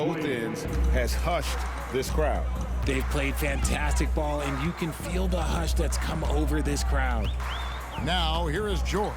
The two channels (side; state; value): both; identical; correlation 1.00